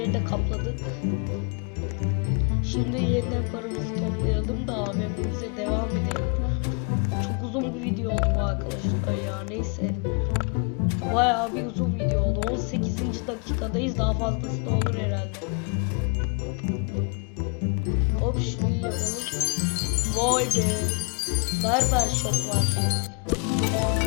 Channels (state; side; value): quieter; right; 36.7 dB